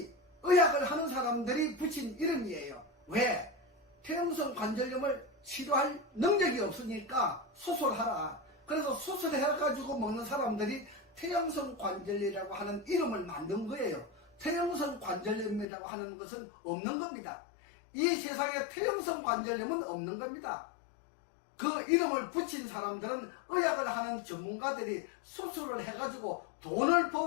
의학을 하는 사람들이 붙인 이름이에요. 왜? 퇴행성 관절염을 치료할 능력이 없으니까 수술하라. 그래서 수술해가지고 먹는 사람들이 퇴행성 관절염이라고 하는 이름을 만든 거예요. 퇴행성 관절염이라고 하는 것은 없는 겁니다. 이 세상에 퇴행성 관절염은 없는 겁니다. 그 이름을 붙인 사람들은 의학을 하는 전문가들이 수술을 해가지고 돈을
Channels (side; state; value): right; drops out; at 15.7 s